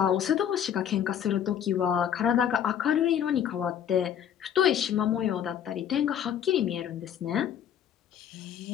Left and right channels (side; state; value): right; quieter; 9.3 dB